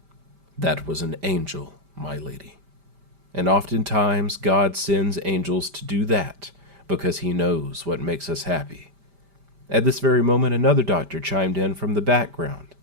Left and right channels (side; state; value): left; late; 5.0 ms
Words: That was an angel, my lady. And oftentimes God sends angels to do that because he knows what makes us happy. At this very moment, another doctor chimed in from the background.